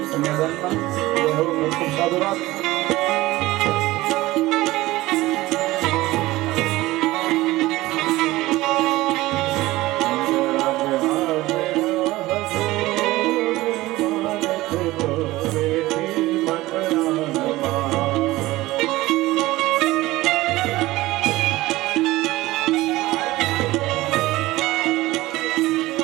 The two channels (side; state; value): left; quieter; 18.3 dB